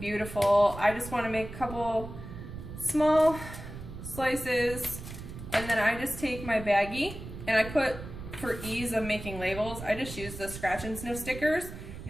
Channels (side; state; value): right; noise; rumble, 11 dB below the sound